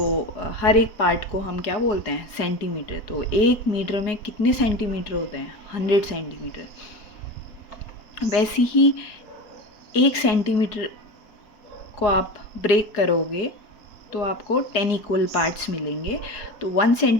हर एक पार्ट को हम क्या बोलते हैं? सेंटीमीटर। तो 1 मीटर में कितने सेंटीमीटर होते हैं? 100 सेंटीमीटर। वैसे ही 1 सेंटीमीटर को आप ब्रेक करोगे तो आपको 10 इक्वल पार्ट्स मिलेंगे। तो 1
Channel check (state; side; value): late; right; 4.8 ms